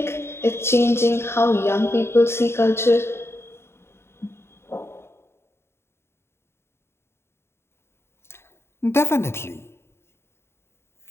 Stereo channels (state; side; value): late; right; 0.12 ms